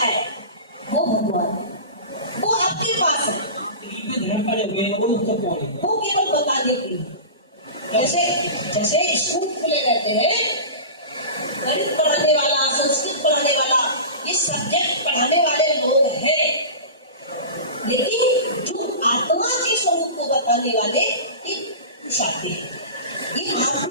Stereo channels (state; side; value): inverted; both; correlation -0.31